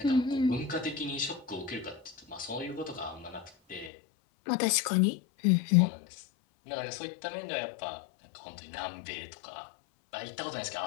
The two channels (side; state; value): right; drops out; at 3.9 s